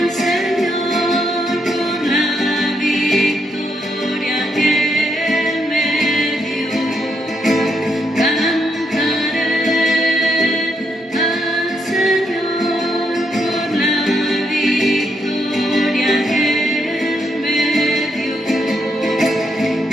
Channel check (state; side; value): normal; both; correlation 0.78